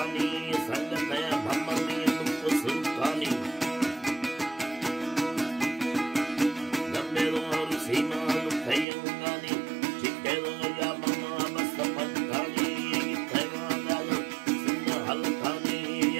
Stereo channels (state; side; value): drops out; left; at 8.8 s